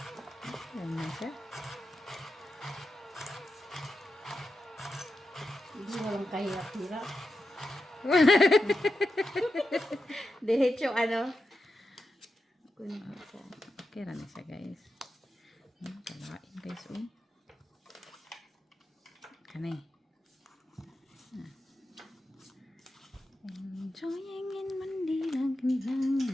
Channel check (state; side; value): normal; both; correlation 0.89